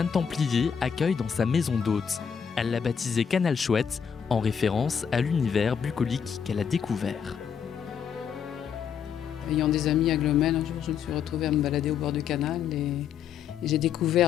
Templier accueille dans sa maison d'hôte. Elle l'a baptisé Canal Chouette, en référence à l'univers bucolique qu'elle a découvert. Ayant des amis à Glomel, un jour je me suis retrouvée à me balader au bord du canal et j'ai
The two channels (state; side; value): quieter; right; 7.4 dB